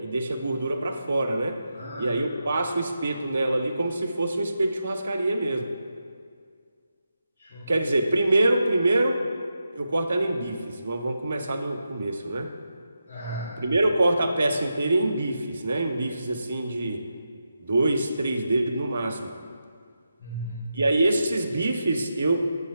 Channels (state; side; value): inverted; both; correlation -0.87